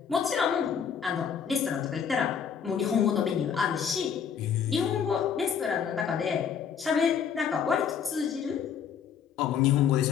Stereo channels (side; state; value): right; quieter; 7.4 dB